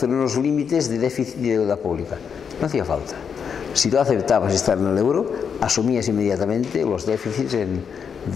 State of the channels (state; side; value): quieter; right; 6.9 dB